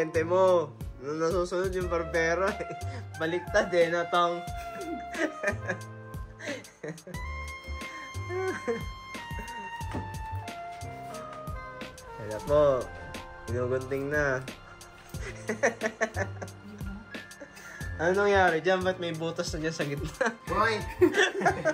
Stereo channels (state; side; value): identical; both; correlation 1.00